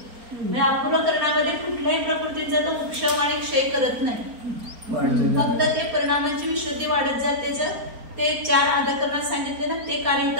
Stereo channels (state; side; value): late; left; 4.3 ms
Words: म्हणजे अपूर्वकरणामध्ये कुठल्याही प्रकृतीचा तो उपशम आणि क्षय करत नाही. फक्त ते परिणामांची विशुद्धी वाढत जाते. ते 4 आदकरणात सांगितले ना, ते